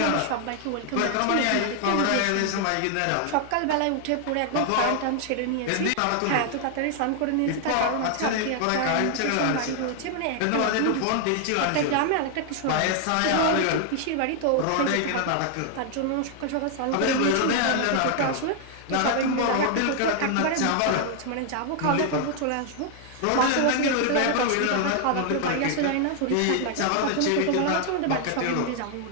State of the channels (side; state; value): both; different; correlation 0.00